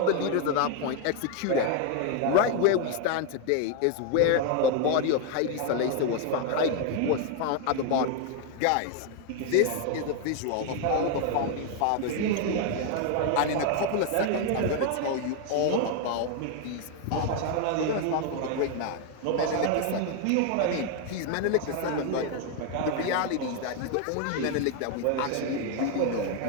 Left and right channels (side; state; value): both; different; correlation 0.01